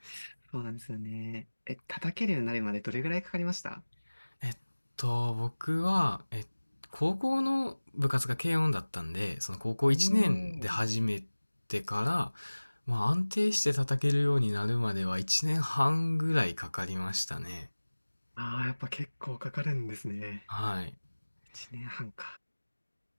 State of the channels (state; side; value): inverted; both; correlation -1.00